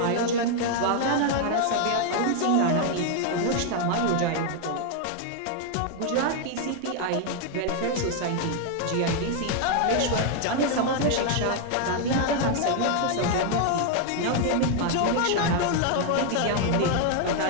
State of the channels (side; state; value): both; different; correlation 0.00